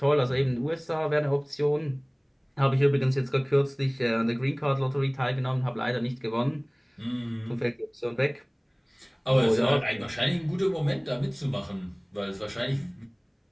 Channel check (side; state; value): both; identical; correlation 1.00